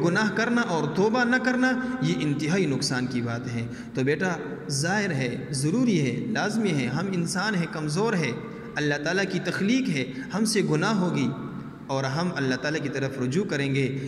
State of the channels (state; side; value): identical; both; correlation 1.00